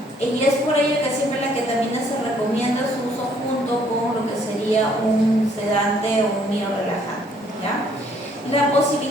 y es por ello que siempre la ketamina se recomienda su uso junto con lo que sería un sedante o un miorelajante, ¿ya? La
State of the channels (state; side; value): normal; both; correlation 0.64